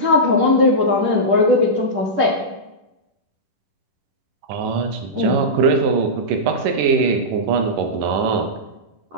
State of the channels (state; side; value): late; left; 10 ms